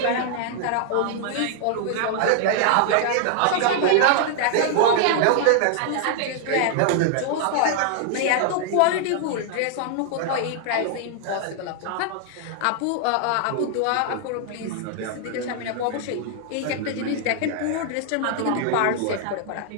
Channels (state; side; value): different; both; correlation -0.01